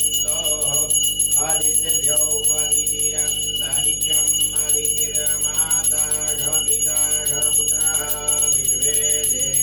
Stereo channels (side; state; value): right; noise; hum, 14 dB below the sound